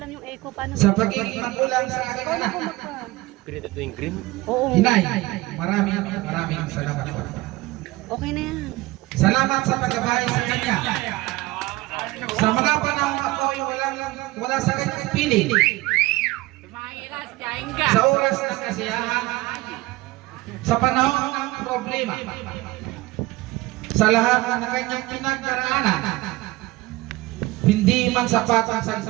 yung echo paano. Sa pagiging magulang sa aking anak. Pinito ito yung green? Oo. Inay, maraming salamat po. Okay na yan. Salamat sa paggabay sa kanya. Sa mga panahon ako'y wala sa kanyang piling. Sa oras ng kasiyahan, sa panahon ng problema, sa lahat ng kanyang pinagdaraanan, hindi man sapat ang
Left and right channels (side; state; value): left; quieter; 20.0 dB